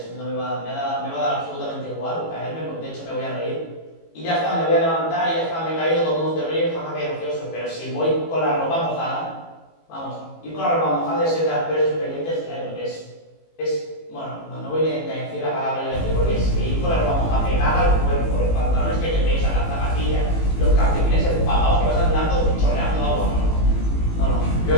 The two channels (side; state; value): right; late; 18 ms